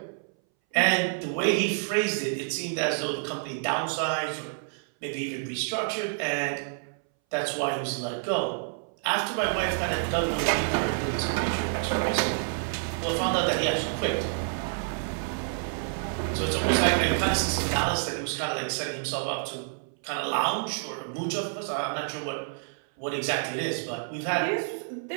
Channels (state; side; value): silent; left; 59 dB below the other